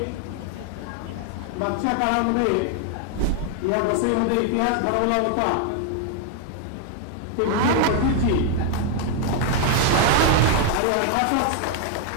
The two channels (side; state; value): both; different; correlation 0.00